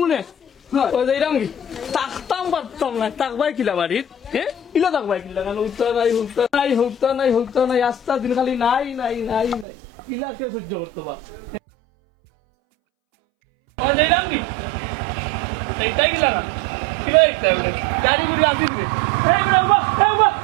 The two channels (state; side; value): drops out; left; at 9.7 s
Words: ওই যাইলাম কি তাকতাম পারতাম না তাকবাই কিলা বাড়িত হ্যাঁ কিলা তাকবাই কিলা কারণ হৌতা নাই আস্তা দিন খালি নাই কিলা কে সহ্য করতে পার যাইলাম কি এইটাই কিলা না কিলা এইটা গাড়ি গুড়ি আসিস